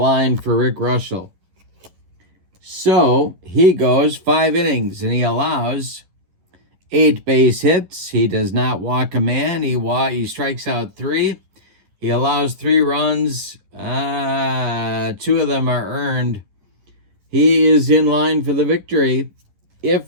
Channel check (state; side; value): late; left; 11 ms